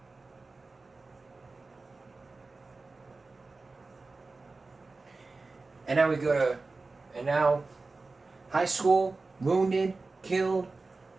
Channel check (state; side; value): quieter; left; 3.7 dB